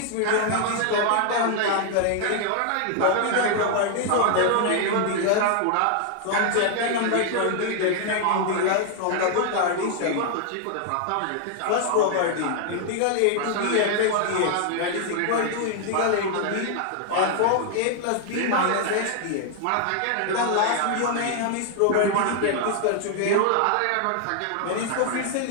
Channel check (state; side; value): different; both; correlation 0.00